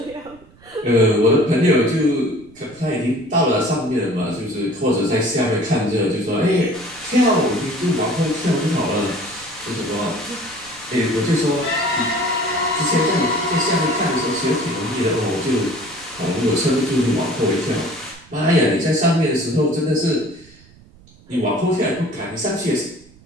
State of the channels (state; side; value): noise; right; rumble, 26 dB below the sound